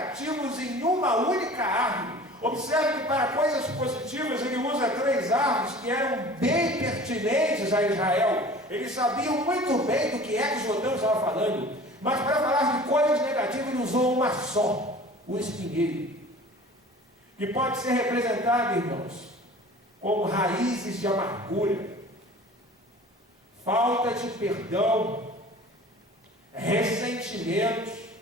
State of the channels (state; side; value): normal; both; correlation 0.43